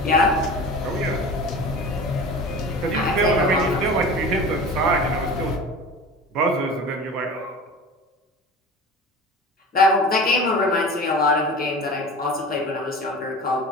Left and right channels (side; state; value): both; normal; correlation 0.35